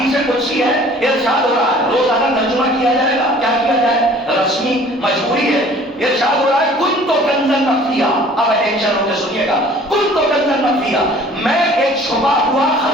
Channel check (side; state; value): both; normal; correlation 0.51